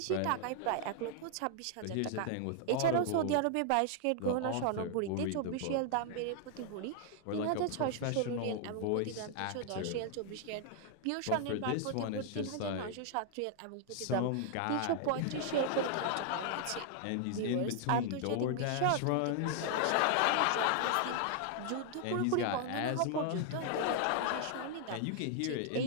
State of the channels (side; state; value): both; different; correlation 0.00